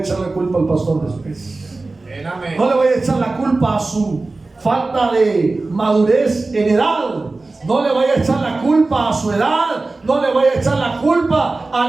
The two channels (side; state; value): left; quieter; 3.4 dB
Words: la culpa al pastor después. No le voy a echar la culpa a su falta de madurez en edad. No le voy a echar la culpa a su edad. No le voy a echar la culpa